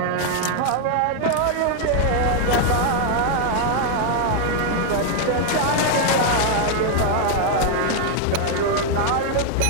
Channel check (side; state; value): both; different; correlation 0.00